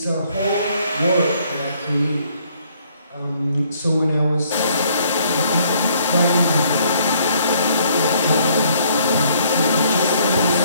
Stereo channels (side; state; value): both; inverted; correlation -0.65